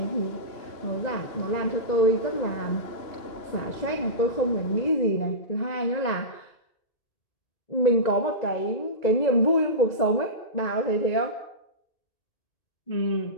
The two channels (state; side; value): late; right; 2.0 ms